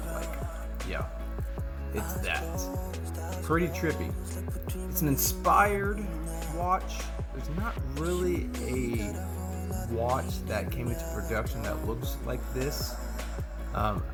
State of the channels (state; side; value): identical; both; correlation 1.00